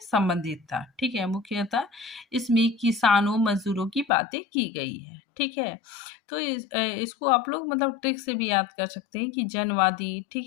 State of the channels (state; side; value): drops out; right; at 4.1 s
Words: संबंधित था, ठीक है। मुख्यतः इसमें किसानों मजदूरों की बातें की गई है, ठीक है। तो इसको आप लोग मतलब ट्रिक से भी याद कर सकते हैं कि जनवादी,